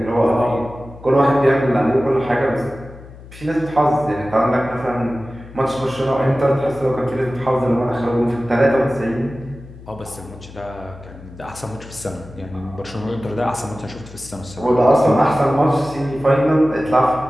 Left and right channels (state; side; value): noise; left; hum, 18 dB below the sound